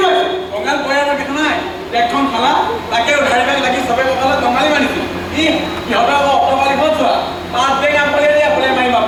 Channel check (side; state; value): both; identical; correlation 1.00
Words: গৈছে কঙাল পয়াৰ দেখা নাই এখন খালা তাকে উধাৰি পাই লাগি চবে কঁকালত কঙালি মানিছিল সিহঁতৰ আকৌ অটপালি ক'ত যোৱা পাঁচ বেগ আপলে দিয়া বোলে মাৰি